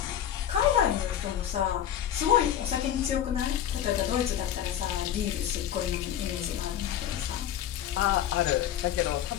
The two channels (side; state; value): right; quieter; 10.5 dB